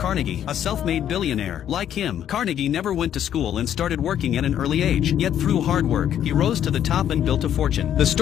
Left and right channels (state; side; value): quieter; right; 10.2 dB